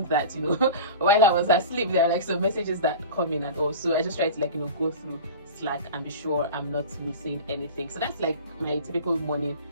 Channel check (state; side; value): inverted; both; correlation -0.33